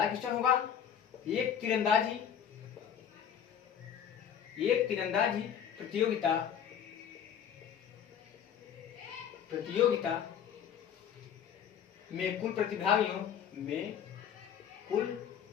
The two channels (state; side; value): quieter; right; 8.6 dB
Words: क्वेश्चन होगा। एक तीरंदाजी प्रतियोगिता में कुल प्रतिभागियों